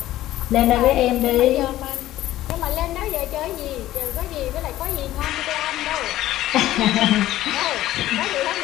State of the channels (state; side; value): quieter; right; 14.5 dB